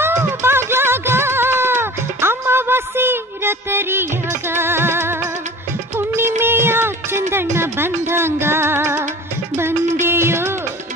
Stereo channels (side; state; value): both; normal; correlation 0.40